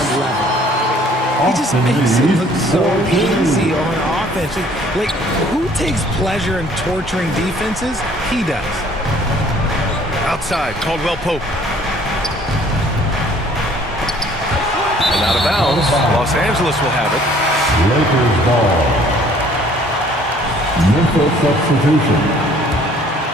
level. He just makes it look so easy on offense. Like, who takes pleasure in torturing defenses? He does. Outside, Caldwell Pope. And out of bounds, Los Angeles will have it. Lakers ball. Memphis substitution.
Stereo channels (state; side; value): normal; both; correlation 0.57